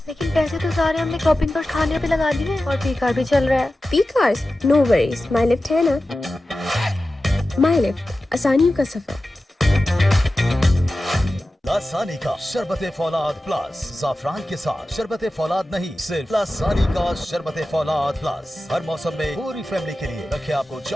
लेकिन पैसे तो सारे हमने शॉपिंग पर खाने पे लगा दिए और पी कार भी चल रहा है। P cars? नो वरीज, माई लिफ्ट है ना। माई लिफ्ट, आसानियों का सफर। लासानी का शरबत फौलाद प्लस। ज़ाफ़रान के साथ शरबत फौलाद नहीं, सिर्फ लासानी का शरबत फौलाद प्लस। हर मौसम में पूरी फैमिली के लिए रखे आपको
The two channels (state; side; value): normal; both; correlation 0.94